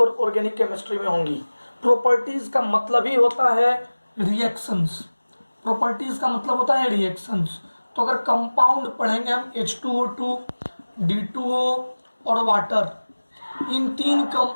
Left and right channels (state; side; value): inverted; both; correlation -1.00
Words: ऑर्गेनिक केमिस्ट्री में होंगी। प्रॉपर्टीज का मतलब ही होता है रिएक्शंस। प्रॉपर्टीज का मतलब होता है रिएक्शंस। तो अगर कंपाउंड पढ़ेंगे हम H2O2, D2O और वाटर, इन 3